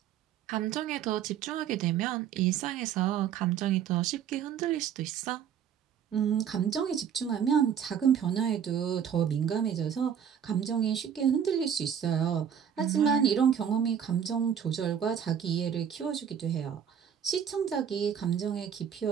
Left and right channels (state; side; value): quieter; left; 8.4 dB